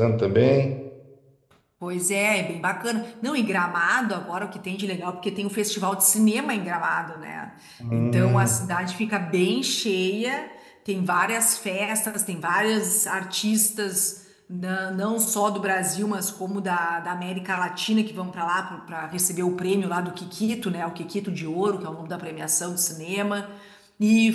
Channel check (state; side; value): identical; both; correlation 1.00